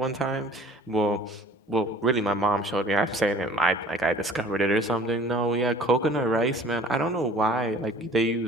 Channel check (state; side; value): normal; both; correlation 0.50